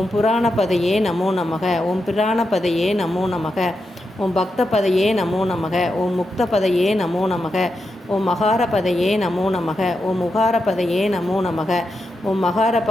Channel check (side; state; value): both; normal; correlation 0.87